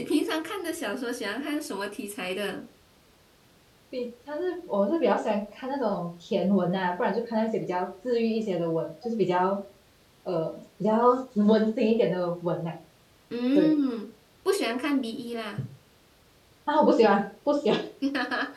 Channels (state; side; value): identical; both; correlation 1.00